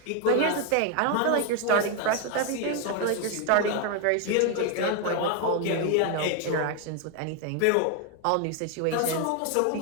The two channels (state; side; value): different; both; correlation 0.01